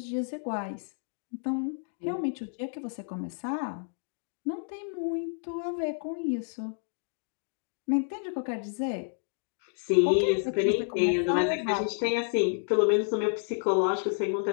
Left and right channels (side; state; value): right; silent; digital silence